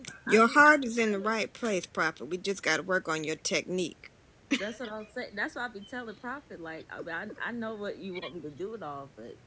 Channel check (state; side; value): identical; both; correlation 1.00